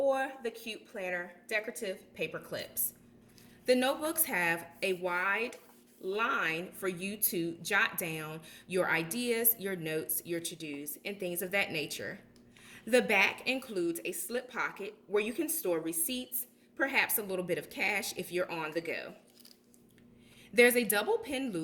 the cute planner decorative paper clips. The notebooks have a wide line for you to jot down your ideas, your notes, your to-dos, and things of that nature. The back includes a slip pocket where you can store receipts, perhaps a little bit of cash if you're on the go. There's a double pin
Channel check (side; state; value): both; identical; correlation 1.00